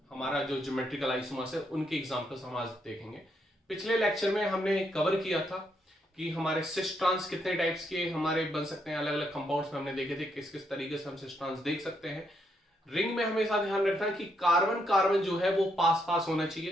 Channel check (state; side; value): normal; both; correlation 0.77